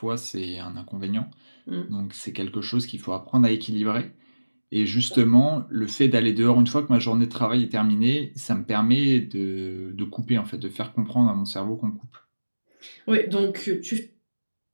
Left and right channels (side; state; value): both; inverted; correlation -1.00